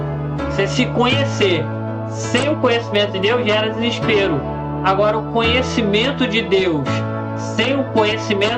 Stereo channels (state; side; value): identical; both; correlation 1.00